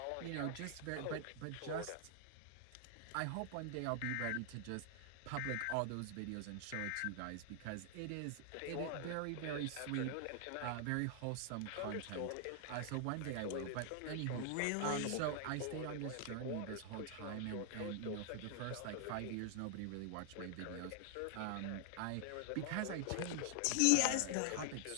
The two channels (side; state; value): both; different; correlation 0.00